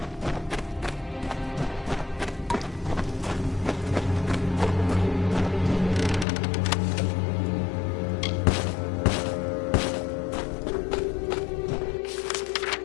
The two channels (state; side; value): drops out; right; at 6.2 s